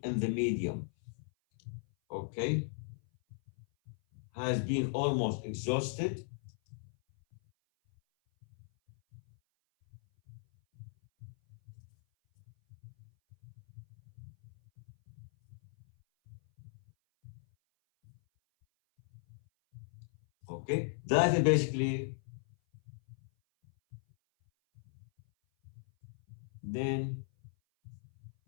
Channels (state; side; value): silent; right; 53 dB below the other